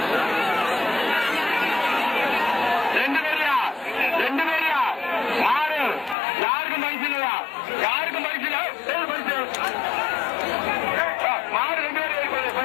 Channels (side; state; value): right; drops out; at 6.2 s